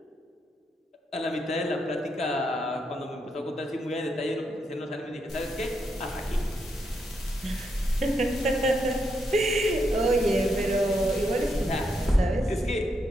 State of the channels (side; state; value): both; normal; correlation 0.80